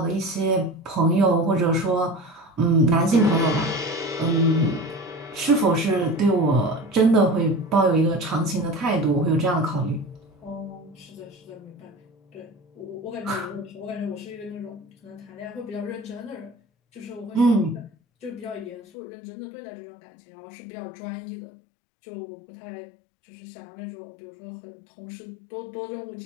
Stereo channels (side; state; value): right; drops out; at 18.8 s